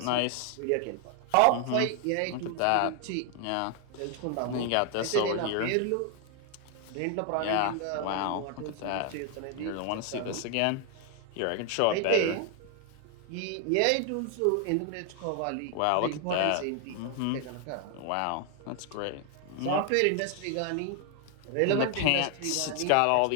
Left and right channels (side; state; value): both; different; correlation 0.00